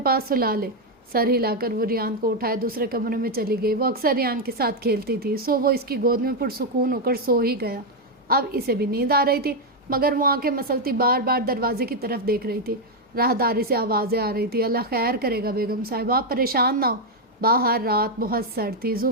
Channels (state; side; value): normal; both; correlation 0.02